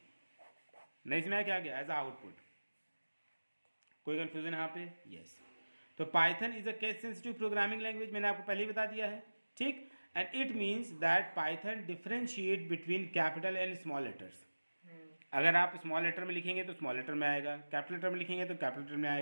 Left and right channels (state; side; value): inverted; both; correlation -1.00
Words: क्या गया एज आउटपुट। कोई कंफ्यूजन यहाँ पे, यस। तो Python is a case sensitive programming language, मैंने आपको पहले ही बता दिया है, ठीक। And it means that Python differentiate between capital and small letters. अगर आप स्मॉल लेटर में लिखेंगे तो स्मॉल लेटर में आएगा, कैपिटल लेटर में लिखेंगे तो कैपिटल लेटर में